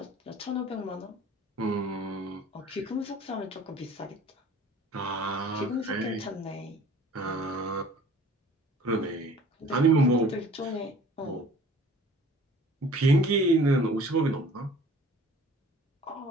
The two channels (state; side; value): normal; both; correlation 0.49